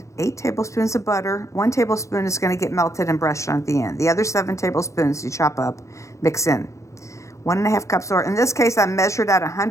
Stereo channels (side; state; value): right; late; 0.15 ms